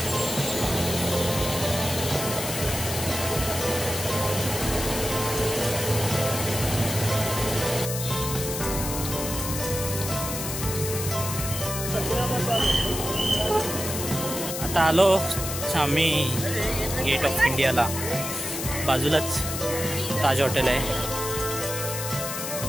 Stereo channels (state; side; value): noise; left; hiss, 5 dB below the sound